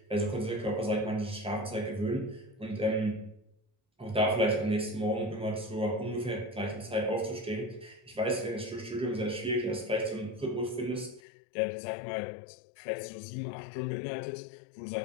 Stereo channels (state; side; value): drops out; right; at 11.2 s